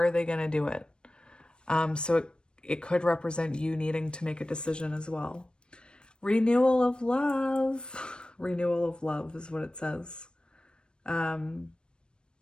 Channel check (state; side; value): late; right; 0.054 ms